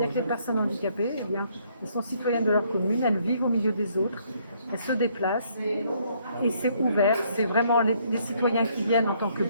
que les personnes handicapées, eh bien, elles sont citoyennes de leur commune, elles vivent au milieu des autres, elles se déplacent, et c'est ouvert. C'est vraiment les citoyens qui viennent en tant que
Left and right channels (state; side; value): inverted; both; correlation -0.68